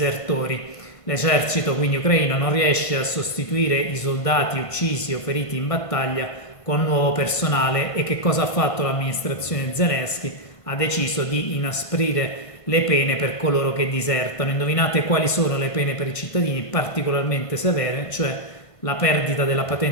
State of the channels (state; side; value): late; right; 1.5 ms